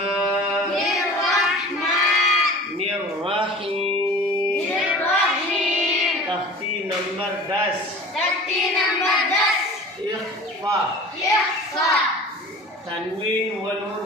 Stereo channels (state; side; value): normal; both; correlation 0.41